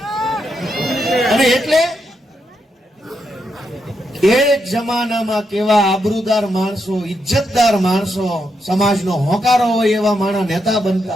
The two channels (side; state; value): both; normal; correlation 0.82